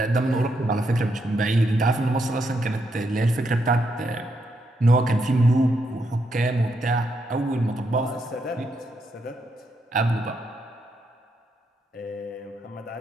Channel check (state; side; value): normal; both; correlation 0.79